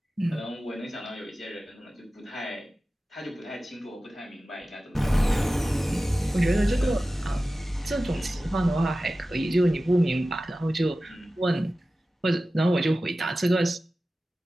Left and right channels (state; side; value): normal; both; correlation 0.95